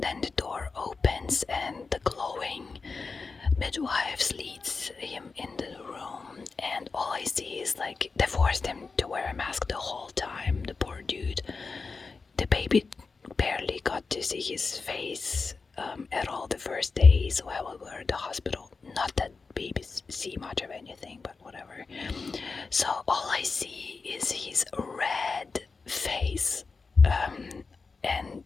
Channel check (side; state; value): right; quieter; 4.4 dB